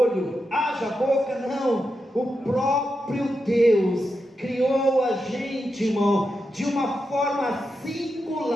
haja boca, não. O próprio Deus criou a gente, irmão, de uma forma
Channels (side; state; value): both; normal; correlation 0.87